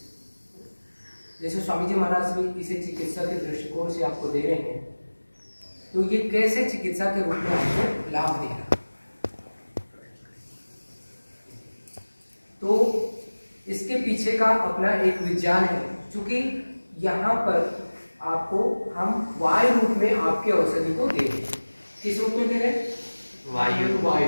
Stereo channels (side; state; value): both; inverted; correlation -1.00